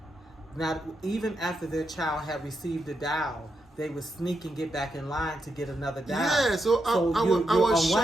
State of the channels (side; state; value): both; normal; correlation 0.84